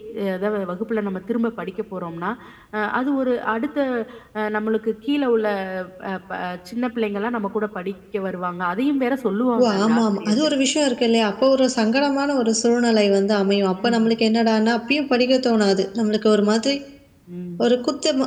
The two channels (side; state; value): both; identical; correlation 1.00